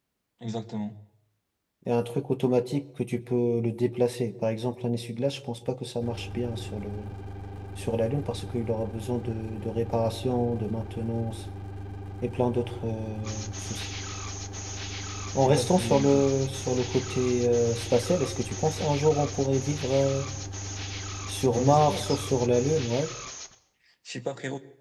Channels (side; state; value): both; identical; correlation 1.00